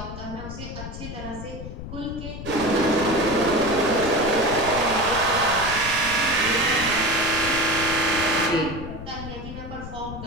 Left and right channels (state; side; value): noise; left; rumble, 10 dB below the sound